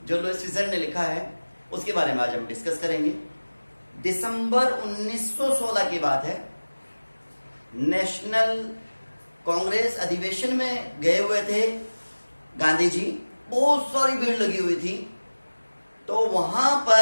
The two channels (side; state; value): both; inverted; correlation -1.00